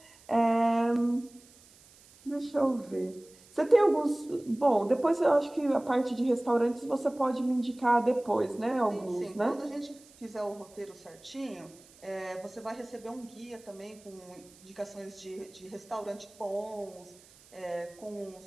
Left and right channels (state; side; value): noise; right; hiss, 25 dB below the sound